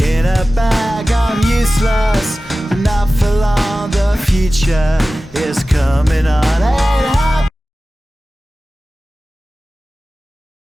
a bag. I'm useless, but not for long. The future is coming on. Ain't happy.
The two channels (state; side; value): normal; both; correlation 0.96